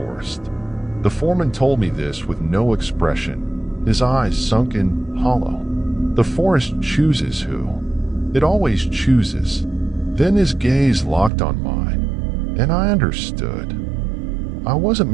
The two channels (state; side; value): drops out; left; at 11.3 s